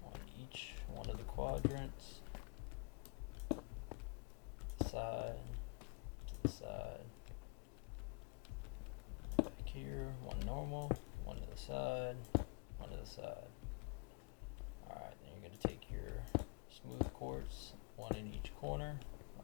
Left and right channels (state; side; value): quieter; right; 33.3 dB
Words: each one of the quadrants. Side to the side. Back here, one normal, one to the side, one to the side. Alright, then you're going to take your smooth quartz, one in each corner,